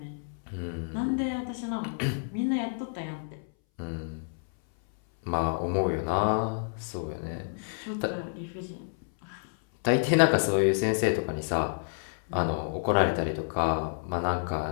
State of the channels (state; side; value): silent; right; 58 dB below the other